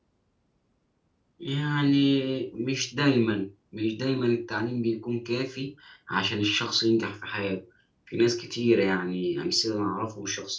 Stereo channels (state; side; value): identical; both; correlation 1.00